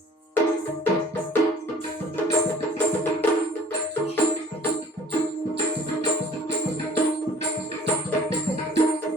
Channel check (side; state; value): both; normal; correlation 0.51